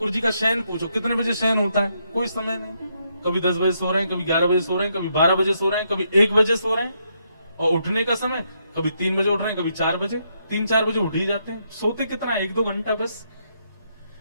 जी का शयन पूछो, कितने बजे शयन होता है? कोई समय नहीं। कभी 10 बजे सो रहे हैं, कभी 11 बजे सो रहे हैं, कभी 12 बजे सो रहे हैं, कभी 1 बजे सो रहे हैं। और उठने का समय कभी 3 बजे उठ रहे हैं, कभी 4 बजे, 3-4 बजे उठ ही जाते हैं। सोते कितना? 1-2 घंटा बस।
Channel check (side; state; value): both; inverted; correlation -0.77